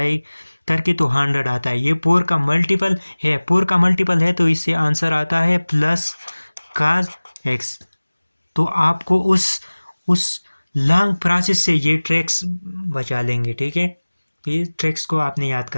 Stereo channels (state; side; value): inverted; both; correlation -1.00